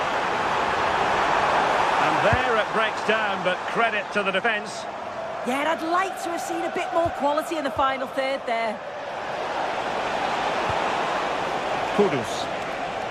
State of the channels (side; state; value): both; identical; correlation 1.00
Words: And there it breaks down, but credit to the defence. Yeah, and I'd like to have seen a bit more quality in the final third there. Kudus.